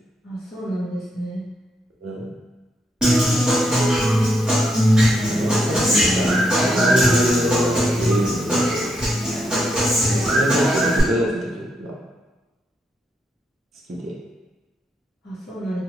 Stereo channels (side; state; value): both; normal; correlation 0.79